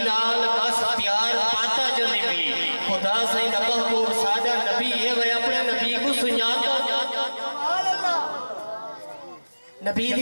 بس پیار پاتا جو نبی خدا سے نہ محبوب سادہ نبی ہے وہ اپنے نبی کو سنیاتا نبی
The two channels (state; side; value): inverted; both; correlation -1.00